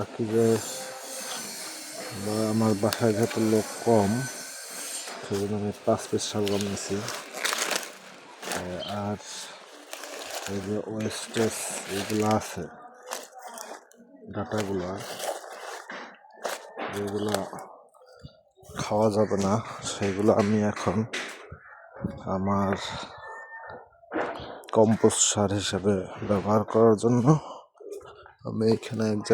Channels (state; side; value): identical; both; correlation 1.00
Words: যে আমার বাসায় যেহেতু লোক কম, সেজন্য আমি 5 পিস শালগম নিয়েছি। আর এই যে ওয়েস্টেজ এইগুলো আছে, ডাটাগুলো, যেগুলো খাওয়া যাবে না, সেগুলো আমি এখন আমার কম্পোস্ট সার হিসেবে ব্যবহার করার জন্য আমি এখানে এক